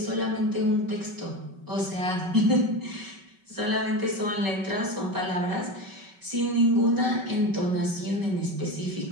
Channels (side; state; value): left; late; 5.2 ms